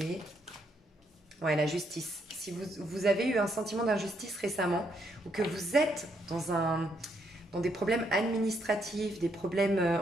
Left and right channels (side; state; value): both; normal; correlation 0.74